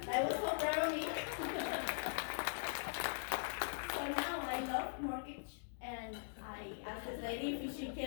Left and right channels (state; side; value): silent; right; digital silence